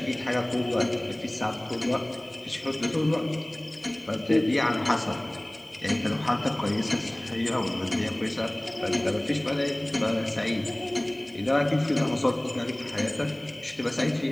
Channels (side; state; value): left; noise; hiss, 29 dB below the sound